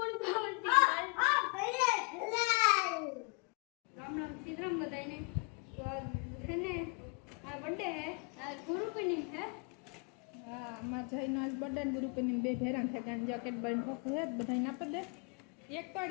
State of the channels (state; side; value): quieter; right; 35.2 dB